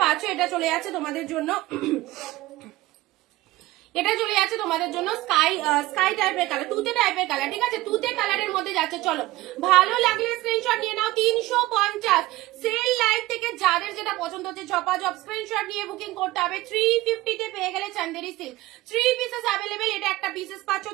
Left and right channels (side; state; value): left; quieter; 17.8 dB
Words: পাচ্ছ, এটা চলে যাচ্ছে তোমাদের জন্য এটা চলে যাচ্ছে তোমাদের জন্য স্কাই টাইপের কালার, তুতে টাইপের কালার, ঠিক আছে, তুতে কালারের মধ্যে যাচ্ছে। চলো ভালো লাগলে স্ক্রিনশট নিয়ে নাও। 350 সেল লাইভ থেকে যাদের যেটা পছন্দ হচ্ছে ঝপাঝপ স্ক্রিনশট নিয়ে বুকিং করতে হবে। 350-তে পেয়ে গেলে চান্দেরি সিল্ক 3 পিসেস অ্যাভেলেবেল, এটা একটা পিসেস পাচ্ছ